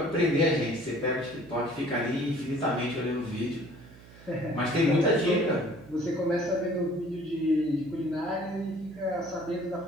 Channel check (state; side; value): noise; right; hum, 21 dB below the sound